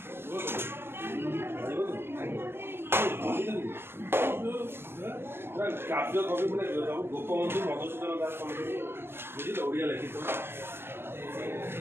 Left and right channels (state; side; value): late; left; 0.11 ms